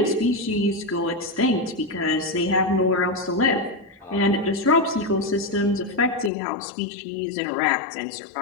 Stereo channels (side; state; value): right; drops out; at 6.3 s